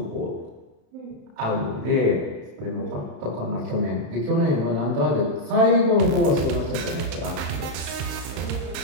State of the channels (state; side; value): late; left; 35 ms